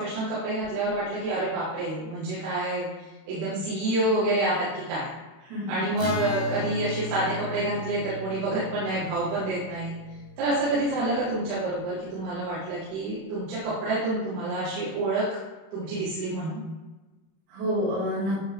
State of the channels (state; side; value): late; left; 31 ms